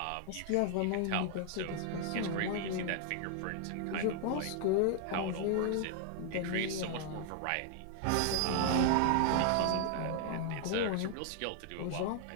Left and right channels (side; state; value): both; different; correlation -0.01